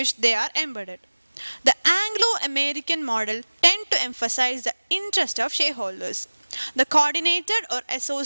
they are embedded. The Anglo-American model tend to emphasize the interest of shareholders. The coordinated or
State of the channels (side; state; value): both; inverted; correlation -1.00